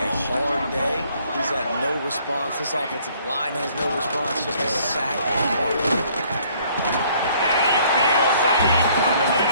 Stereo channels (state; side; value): inverted; both; correlation -0.61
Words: hard day. He's had no response. This offensive line has no response, just a sack apart. And he feels the heat coming in